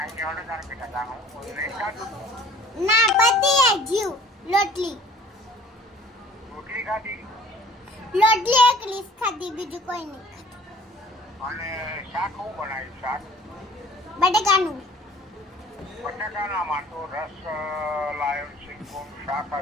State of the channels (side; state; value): both; normal; correlation 0.51